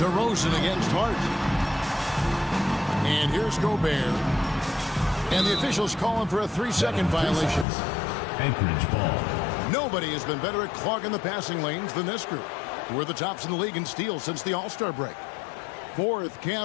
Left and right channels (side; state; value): right; drops out; at 7.7 s